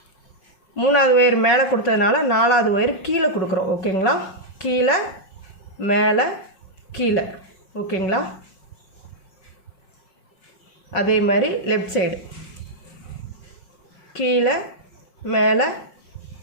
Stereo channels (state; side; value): late; right; 5.6 ms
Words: 3வது ஒயர் மேலே கொடுத்ததுனால 4வது ஒயர் கீழே கொடுக்குறோம். ஓகேங்களா? கீழே மேலே கீழே. ஓகேங்களா? அதே மாதிரி லெஃப்ட் சைடு கீழே மேலே